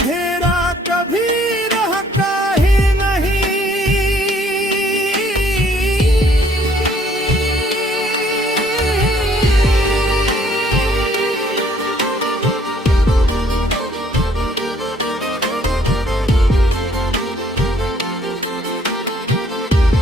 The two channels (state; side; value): normal; both; correlation 0.62